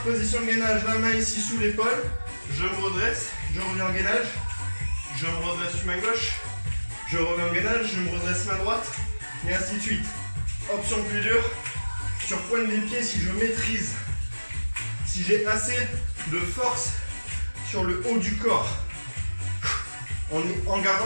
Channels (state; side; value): inverted; both; correlation -1.00